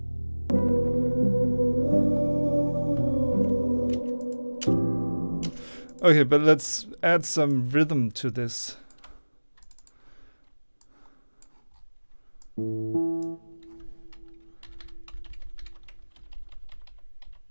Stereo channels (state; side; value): inverted; both; correlation -1.00